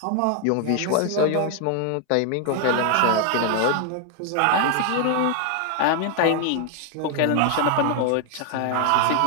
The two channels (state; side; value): different; both; correlation 0.00